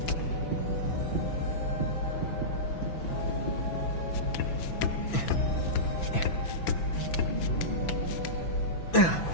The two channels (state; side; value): late; right; 6.0 ms